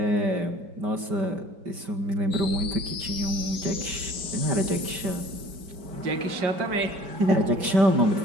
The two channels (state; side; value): late; left; 5.1 ms